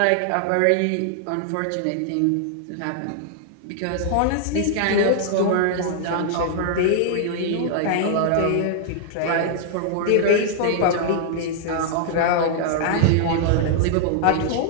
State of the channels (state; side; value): different; both; correlation -0.01